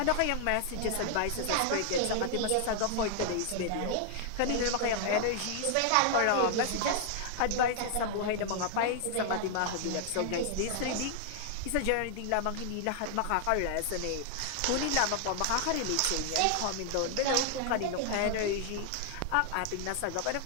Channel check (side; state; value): both; different; correlation 0.00